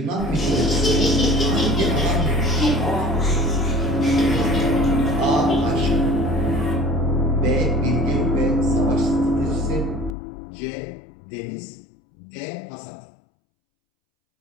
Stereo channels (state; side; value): drops out; right; at 10.2 s